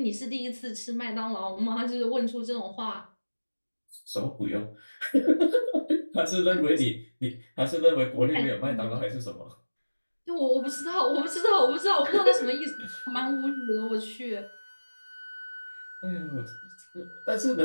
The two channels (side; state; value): both; inverted; correlation -1.00